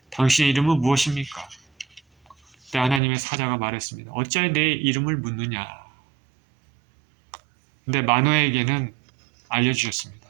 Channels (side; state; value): left; drops out; at 3.0 s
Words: 당신의 이름은 무엇입니까? 그때 하나님의 사자가 말했습니다. 어찌하여 내 이름을 묻느냐. 근데 마노아에게는 알려주셨습니다.